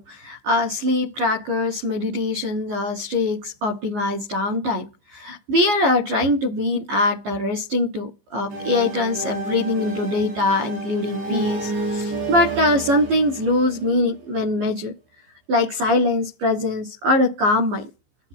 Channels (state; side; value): late; left; 15 ms